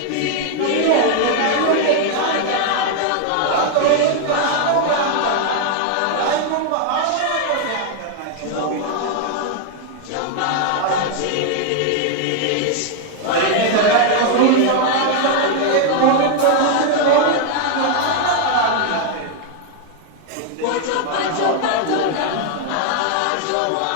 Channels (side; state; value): both; different; correlation 0.00